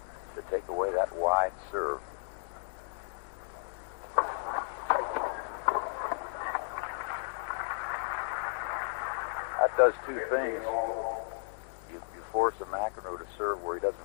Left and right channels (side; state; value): right; silent; digital silence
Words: to take away that wide serve? that does two things. You force a McEnroe to serve where he doesn't